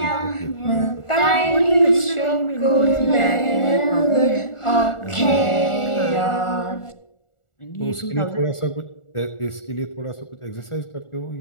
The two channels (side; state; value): right; late; 1.4 ms